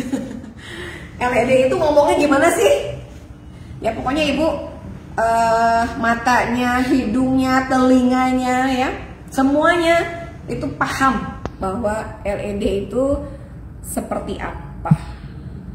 LED itu ngomongnya gimana sih? Ya pokoknya Ibu matanya, hidungnya, telinganya ya, semuanya itu paham bahwa LED itu seperti apa.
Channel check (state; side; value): identical; both; correlation 1.00